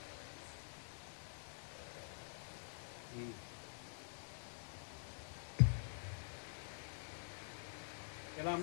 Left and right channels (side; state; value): right; silent; digital silence